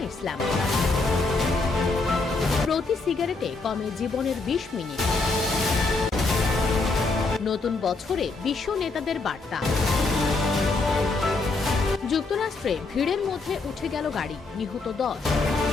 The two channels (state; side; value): quieter; right; 3.6 dB